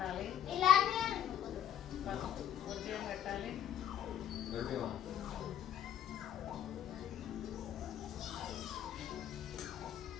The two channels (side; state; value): right; quieter; 10.3 dB